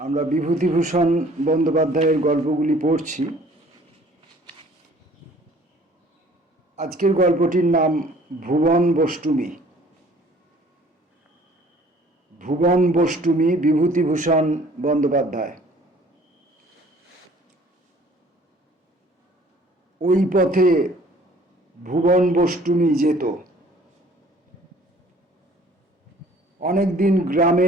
আমরা বিভূতিভূষণ বন্দ্যোপাধ্যায়ের গল্পগুলি পড়ছি। আজকের গল্পটির নাম ভুবন বষ্টুমী। ভুবন বষ্টুমী, বিভূতিভূষণ বন্দ্যোপাধ্যায়। ওই পথে ভুবন বষ্টুমী যেত। অনেক দিন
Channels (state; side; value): normal; both; correlation 0.54